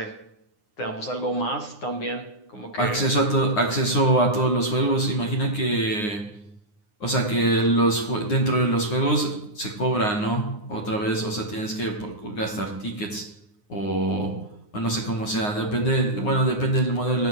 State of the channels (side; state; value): right; late; 9.7 ms